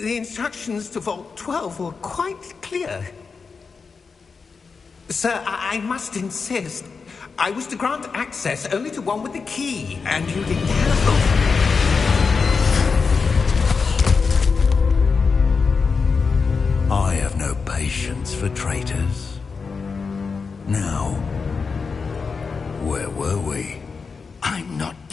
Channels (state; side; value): quieter; right; 5.0 dB